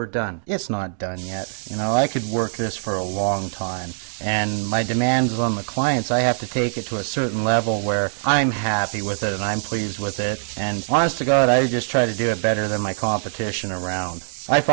done. It's not done yet. You know, I could work this for a long time. And my demands on the clients, I have to take it to a certain level where I'm happy with it and I'm pleased with it. And honest to God, I just try to do it better than my competition around. I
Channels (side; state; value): left; silent; digital silence